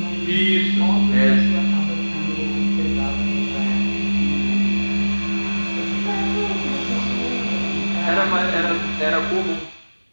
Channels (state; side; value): inverted; both; correlation -1.00